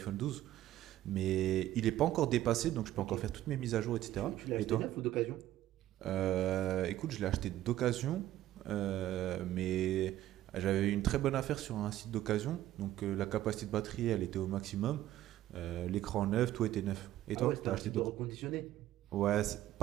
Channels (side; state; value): left; quieter; 13.6 dB